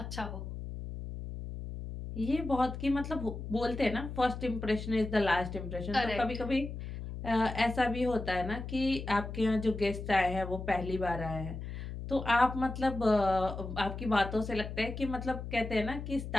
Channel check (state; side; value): noise; left; hum, 8 dB below the sound